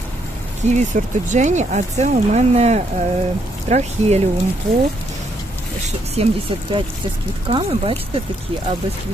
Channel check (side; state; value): both; normal; correlation 0.73